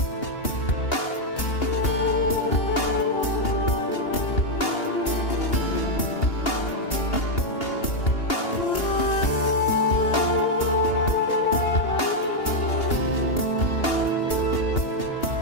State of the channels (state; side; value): late; right; 2.8 ms